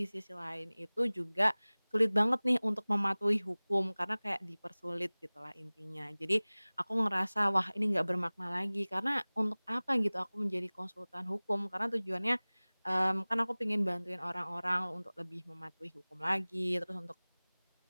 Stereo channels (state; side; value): inverted; both; correlation -1.00